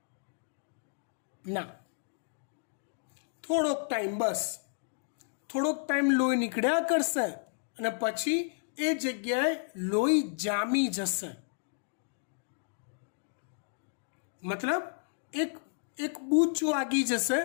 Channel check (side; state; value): right; silent; digital silence